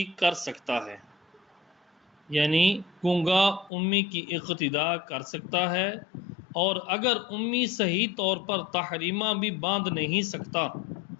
کر سکتا ہے، یعنی گونگا امی کی اقتدا کر سکتا ہے، اور اگر امی صحیح طور پر تحریمہ بھی باندھ نہیں سکتا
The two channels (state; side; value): drops out; right; at 3.7 s